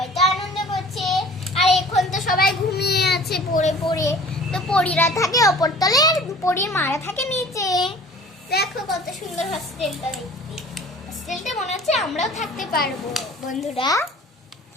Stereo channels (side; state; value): both; normal; correlation 0.46